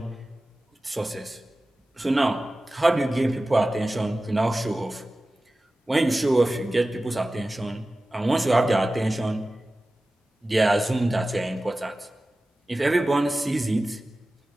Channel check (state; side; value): normal; both; correlation 0.96